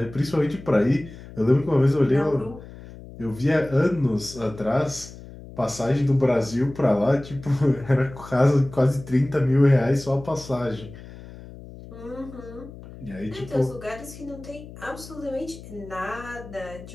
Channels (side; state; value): left; noise; hum, 16 dB below the sound